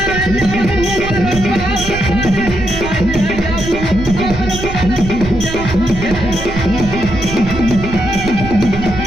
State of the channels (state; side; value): noise; right; rumble, 8 dB below the sound